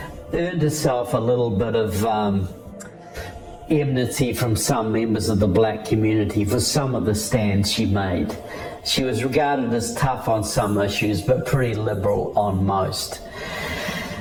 earned herself a little bit of enmity from some members of the black community for some of the stands she made. She was regarded as tough on some issues, but pretty liberal on most.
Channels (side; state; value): both; identical; correlation 1.00